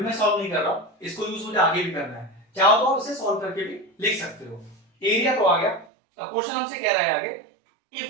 सॉल्व नहीं कर रहा हूं, इसको यूज मुझे आगे भी करना है, चाहो तो इसे सॉल्व करके भी लिख सकते हो। एरिया तो आ गया। अब क्वेश्चन हमसे कह रहा है आगे,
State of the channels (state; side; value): drops out; left; at 5.9 s